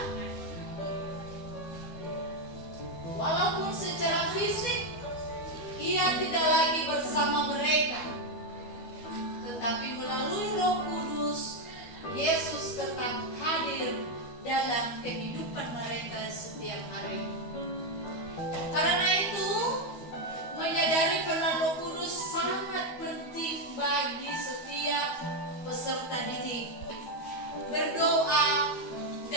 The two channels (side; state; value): right; late; 12 ms